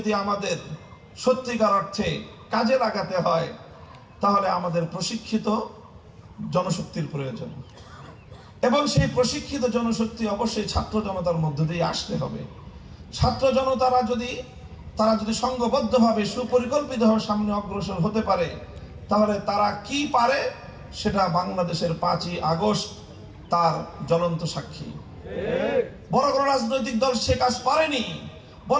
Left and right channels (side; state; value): both; identical; correlation 1.00